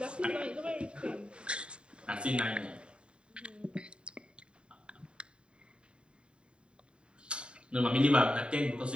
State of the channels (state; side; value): late; left; 0.053 ms